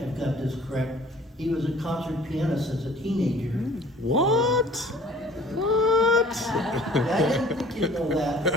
I've got this correct, he was a concert pianist as a teenager. What? What? I didn't think you'd know that.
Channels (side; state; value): both; normal; correlation 0.51